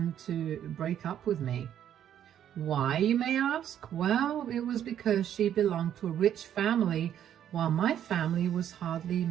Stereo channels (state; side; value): quieter; left; 10.2 dB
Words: to break up with me. Why, you may ask? Well, it was because she belonged to a rich family while my family was hardly